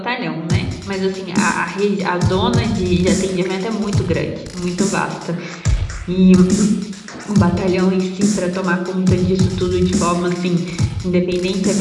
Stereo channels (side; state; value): both; identical; correlation 1.00